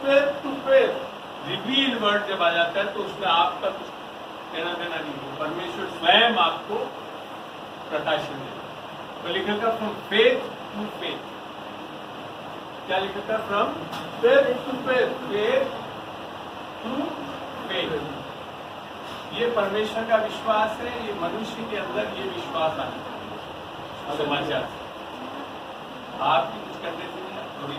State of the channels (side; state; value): both; identical; correlation 1.00